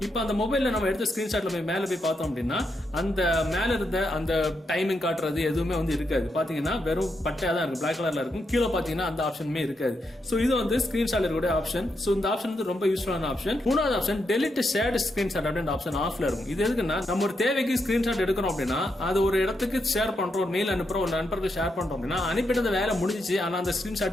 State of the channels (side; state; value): both; normal; correlation 0.82